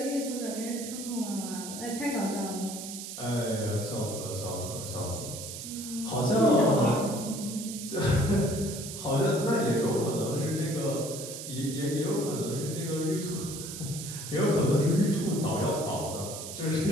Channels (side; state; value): right; noise; hiss, 9 dB below the sound